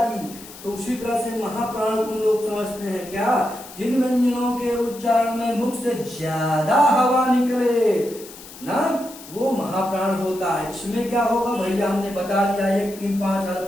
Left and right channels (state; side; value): noise; left; hiss, 17 dB below the sound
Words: तो उसी तरह से महाप्राण को लोग समझते हैं क्या? जिन व्यंजनों के उच्चारण में मुख से ज्यादा हवा निकले ना, वो महाप्राण होता है। इसमें क्या होगा भैया? हमने बता दिया 1, 3, 5 अल्प